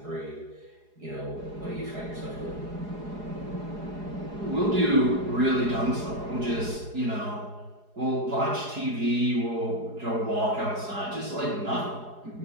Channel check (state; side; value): late; left; 4.8 ms